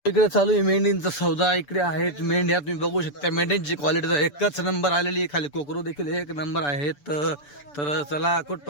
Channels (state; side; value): late; right; 6.9 ms